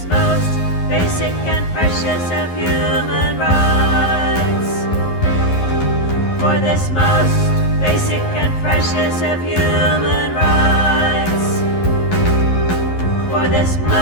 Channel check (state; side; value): late; right; 11 ms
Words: most basic and precious of human rights. For this most basic and precious of human rights. For this